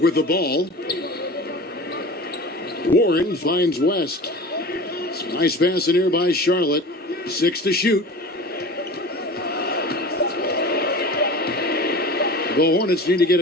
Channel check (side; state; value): both; normal; correlation 0.36